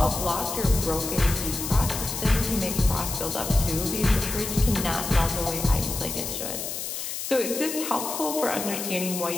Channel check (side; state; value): left; noise; hiss, 5 dB below the sound